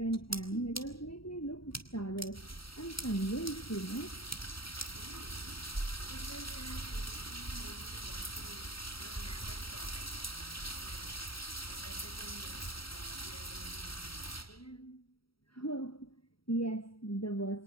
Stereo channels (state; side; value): late; right; 0.75 ms